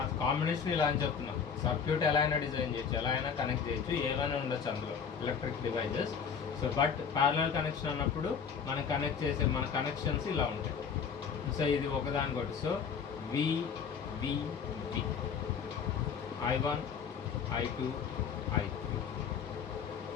కాంబినేషన్ ఇలా అని చెప్తున్నాం. సర్క్యూట్ ఎలా అయినా డిజైన్ చేయొచ్చు, ఎలా అయినా కనెక్ట్ చేయొచ్చు, ఏమైనా ఉండొచ్చు అందులో electric devices. So but parallel connection అన్నప్పుడు మనం కనెక్ట్ చేసే మన కనెక్షన్స్ ఇలా ఉంటాయి. సో ఇది ఒకదానికొకటి. So we we we I1 I2 I3.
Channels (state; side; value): quieter; right; 6.7 dB